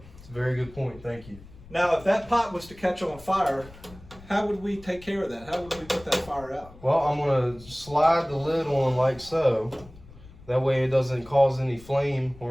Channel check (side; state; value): left; noise; rumble, 20 dB below the sound